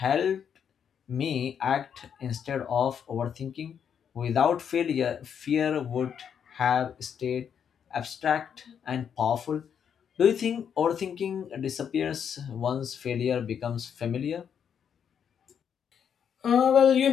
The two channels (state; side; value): quieter; right; 7.9 dB